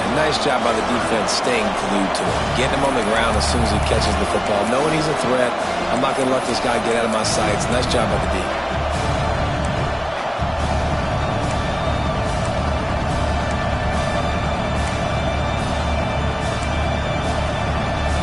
And nice job by the defense staying glued to him. Getting him on the ground as soon as he catches the football. Knowing he's a threat, I'm not going to let this guy get out of my sights. Nice job by the D.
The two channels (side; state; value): both; identical; correlation 1.00